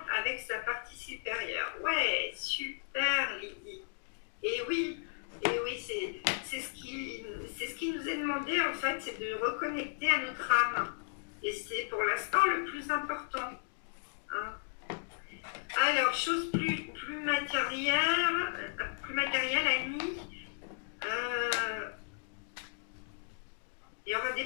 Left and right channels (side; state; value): right; silent; digital silence